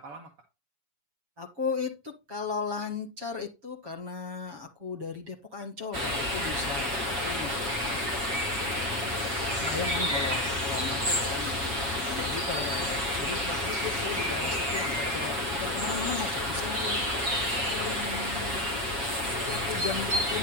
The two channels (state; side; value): late; left; 7.1 ms